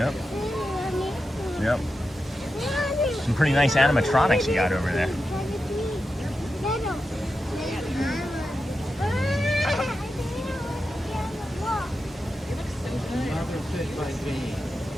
Yep. Some pretty nice animatronics you got over there.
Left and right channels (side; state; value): both; normal; correlation 0.89